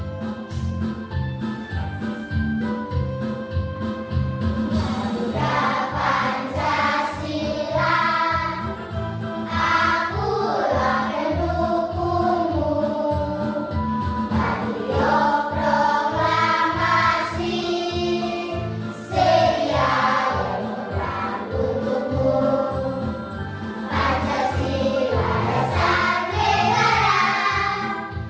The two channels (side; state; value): both; identical; correlation 1.00